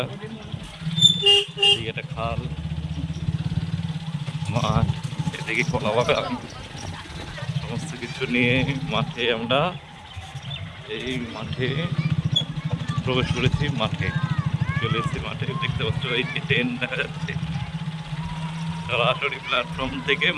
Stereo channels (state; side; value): identical; both; correlation 1.00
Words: এদিকে একটা খাল, মাঠ, এদিকে কলা বাগান, সমস্ত কিছু নিয়ে মাঠে আমরা এই মাঠে প্রবেশ করেছি। মাঠে চলে এসেছি, মাঠে দেখতে পাচ্ছ এই যে ট্রেন দেখা যাচ্ছে, সরাসরি প্ল্যাটফর্ম থেকে